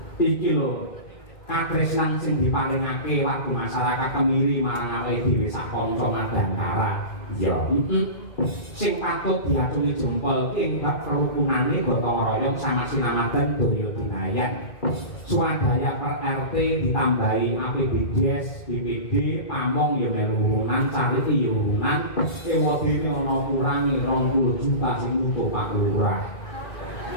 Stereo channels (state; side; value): late; right; 2.3 ms